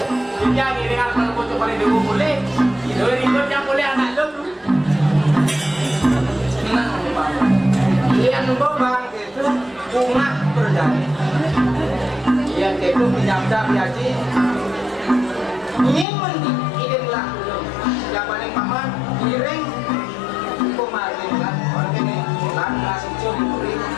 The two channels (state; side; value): drops out; right; at 16.1 s